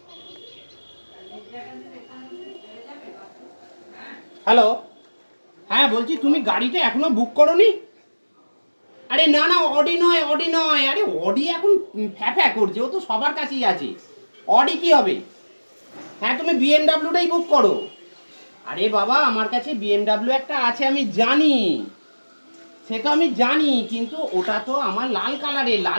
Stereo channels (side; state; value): both; inverted; correlation -1.00